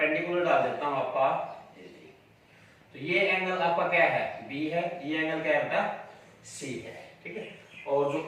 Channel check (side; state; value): both; identical; correlation 1.00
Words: डाल देता हूं आपका, तो ये एंगल आपका क्या है, बी है, ये एंगल क्या है बेटा, सी है, ठीक है। और